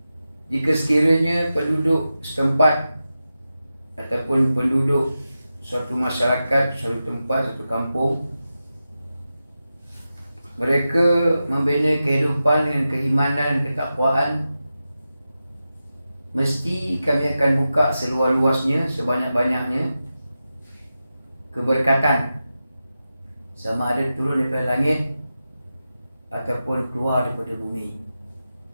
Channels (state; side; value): inverted; both; correlation -0.92